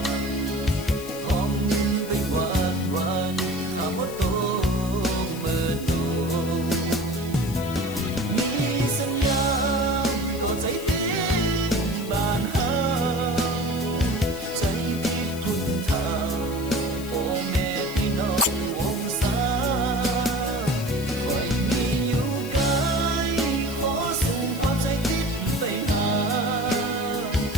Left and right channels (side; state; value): left; noise; hiss, 15 dB below the sound